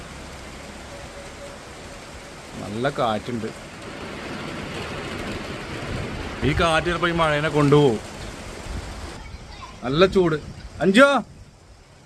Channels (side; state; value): both; identical; correlation 1.00